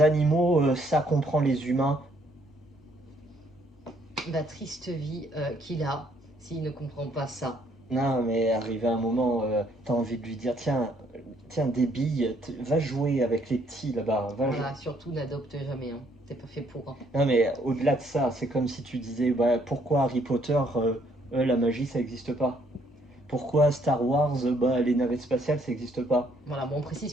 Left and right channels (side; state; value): both; normal; correlation 0.67